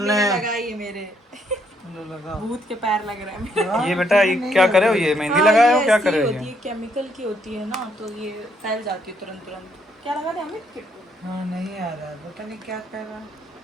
लगाई है मेरे भूत के पैर लग रहे हैं। ये बेटा ये क्या करे हो, ये मेहंदी लगाए हो, क्या करे हो होती है, ये? केमिकल की होती है ना, तो ये फैल जाती है तुरंत। क्या लगा दे हमें? हाँ नहीं आ रहा, पता नहीं क्या कर रहा।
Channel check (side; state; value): both; normal; correlation 0.72